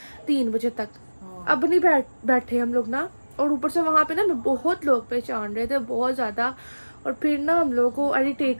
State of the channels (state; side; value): inverted; both; correlation -1.00